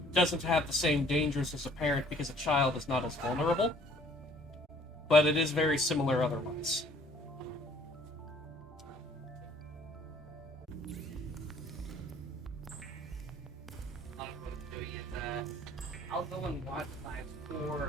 doesn't have the same dangers as a parent because a child is not as vulnerable, but it is very similar otherwise. I'll go and watch live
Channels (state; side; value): normal; both; correlation 0.57